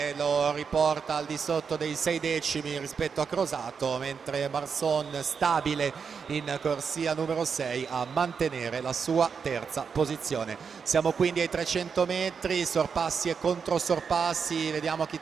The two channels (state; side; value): quieter; left; 6.1 dB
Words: lo riporta al di sotto dei 6 decimi rispetto a Crosato, mentre Marson, stabile in corsia numero 6, a mantenere la sua terza posizione. Siamo quindi ai 300 metri, sorpassi e controsorpassi, vediamo chi